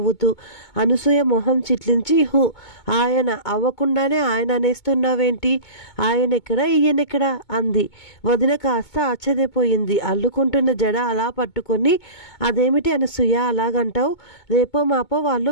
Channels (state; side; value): late; right; 2.2 ms